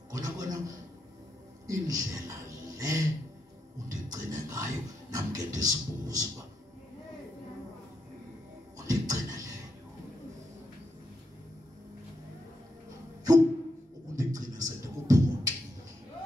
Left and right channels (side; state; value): both; normal; correlation 0.82